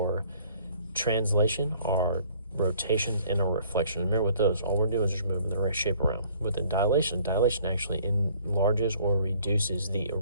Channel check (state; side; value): inverted; both; correlation -0.57